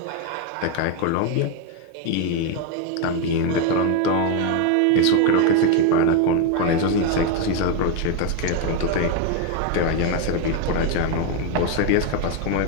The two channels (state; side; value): different; both; correlation 0.02